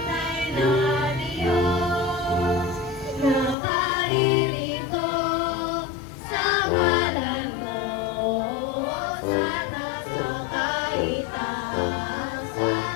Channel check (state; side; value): drops out; right; at 3.6 s